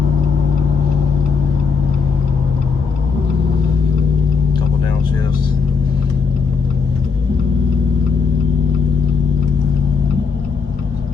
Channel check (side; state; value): right; quieter; 5.4 dB